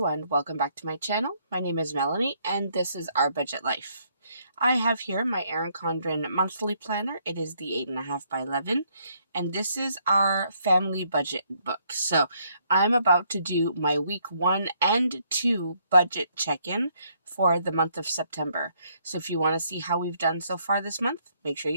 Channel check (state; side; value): inverted; both; correlation -0.70